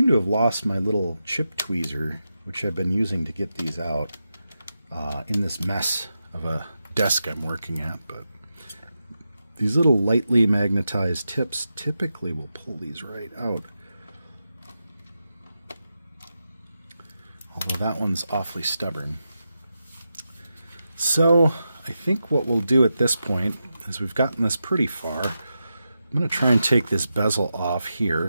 to have lost my little chip tweezer, which I've been using to get these out in this mess of a desk I'm working at. But these little lightly magnetized tips typically will pull these right out. Although that one's awfully stubborn. So I think what we'll do at this point is we've gotten this pretty far. I'm going to try and take this bezel off here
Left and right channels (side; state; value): both; inverted; correlation -0.89